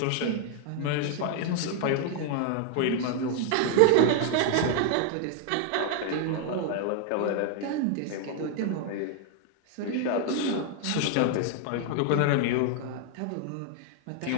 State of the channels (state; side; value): different; both; correlation 0.00